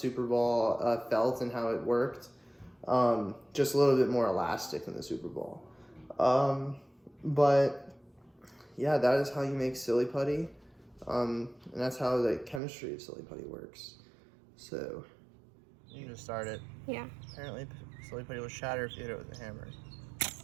Ball felt and how it worked. Just a little bit more elastic than the Super Ball. But yeah, that is how you make silly putty. And that's how the chemistry of silly putty works. So, you can just start it. Yeah. Apparently, silly putty will shatter if you hit it with a hammer.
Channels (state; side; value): drops out; left; at 12.6 s